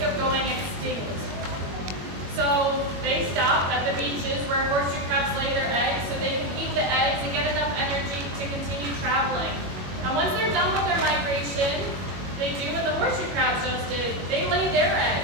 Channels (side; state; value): left; late; 21 ms